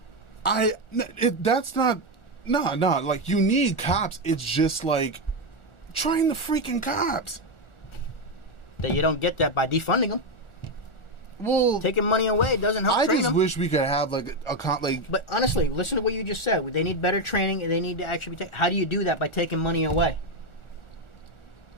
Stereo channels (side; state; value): right; late; 1.4 ms